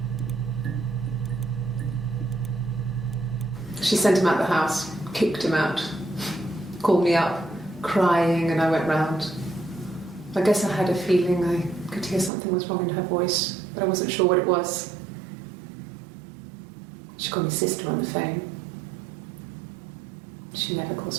She sent him out the house, kicked him out, called me up, crying, and I went round. I guess I had a feeling I could hear something was wrong in her voice, but I wasn't sure what it was. She called me sister on the phone. She never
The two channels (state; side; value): drops out; left; at 12.3 s